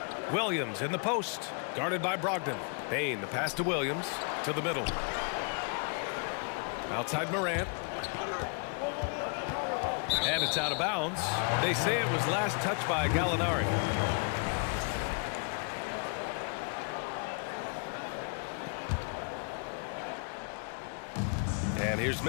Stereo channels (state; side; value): quieter; right; 39.0 dB